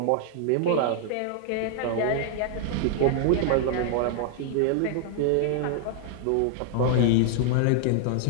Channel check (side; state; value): both; different; correlation -0.01